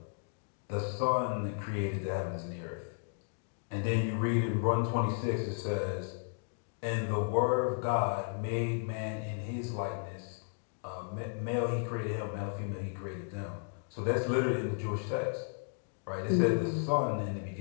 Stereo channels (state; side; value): silent; right; 55 dB below the other